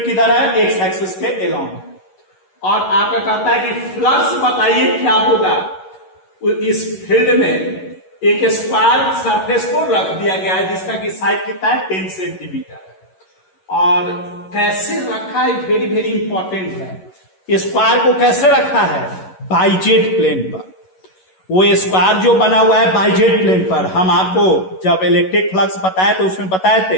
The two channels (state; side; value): late; right; 11 ms